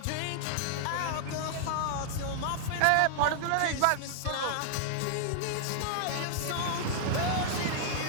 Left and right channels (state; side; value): different; both; correlation 0.00